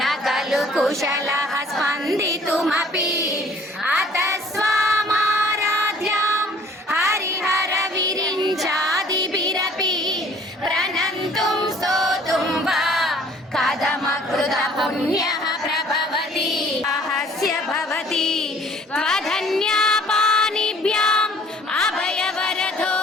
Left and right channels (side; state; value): both; normal; correlation 0.55